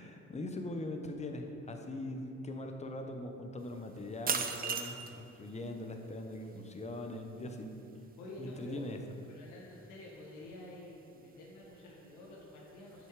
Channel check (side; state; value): both; normal; correlation 0.37